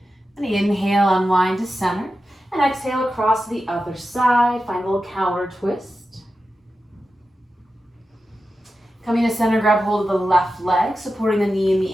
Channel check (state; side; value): normal; both; correlation 0.92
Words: And inhale, unwind to center, and exhale across to the other side. Find a little counter twist. Coming to center, grab hold of the left leg, supporting the knee and the